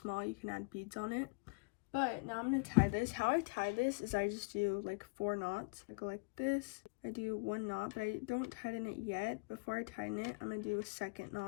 you can add beads on it. But now I'm going to tie this. How I tie this is I just do like 4 knots. I go like this. I do 1 knot, but I don't tighten it yet. Before I tighten it, I'm going to do a second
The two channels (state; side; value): quieter; right; 31.4 dB